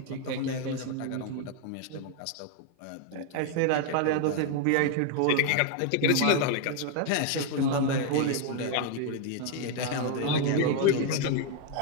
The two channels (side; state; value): both; different; correlation 0.00